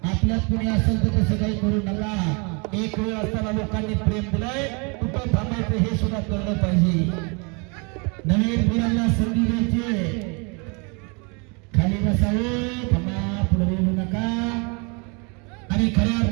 आपल्यात कुणी असेल तर तसं काही करू नका. एक वेळ असताना लोकांनी प्रेम दिलंय, कुठं थांबायचं हे सुद्धा कळलं पाहिजे. नवीन मुलांना संधी द्यायची. खाली बसावे, थांबा, पुढे येऊ नका. आणि खऱ्या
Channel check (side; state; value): left; quieter; 32.6 dB